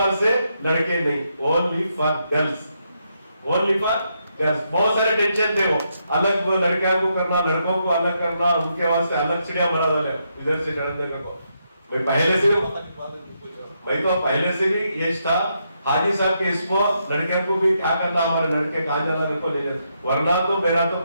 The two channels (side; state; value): both; inverted; correlation -0.80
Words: से लड़के नहीं, only for girls, only for girls. बहुत सारे टेंशन थे, वो अलग वो लड़कियों को करना, लड़कों को अलग करना, उनके वास्ते अलग चिड़िया बना डाले इधर से चढ़ने को। मैं पहले से भी ये था हाजी साहब के इसको लड़कियों को भी क्या करना, हमारे लड़के कहाँ जाना लड़को ले जाए, वरना तो मेरा तो